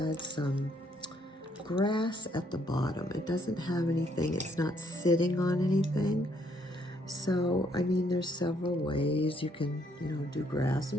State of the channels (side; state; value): both; normal; correlation 0.69